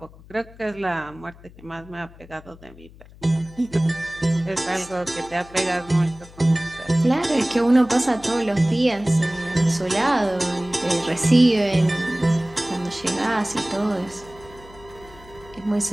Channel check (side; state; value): left; noise; hum, 21 dB below the sound